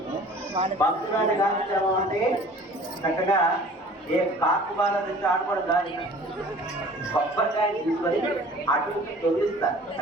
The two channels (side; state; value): both; normal; correlation 0.47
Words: భక్తురాలి కార్యక్రమం అంటే చక్కగా ఏ కాకు బాల తెచ్చి ఆడుకోవడం దాని కొబ్బరికాయ తీసుకొని అటు తొలిస్తారు